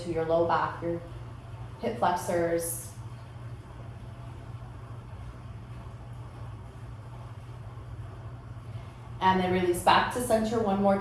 to your low back, your hip flexors. And then release back to center one more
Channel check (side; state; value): both; identical; correlation 1.00